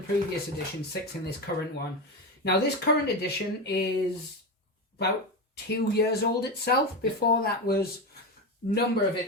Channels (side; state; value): both; normal; correlation 0.17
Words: edition, 6 in this current one. Now, this current edition is about 2 years old itself. Before that was number of